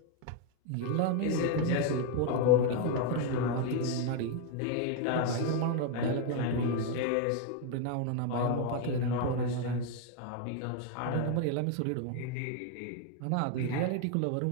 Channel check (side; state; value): both; different; correlation 0.01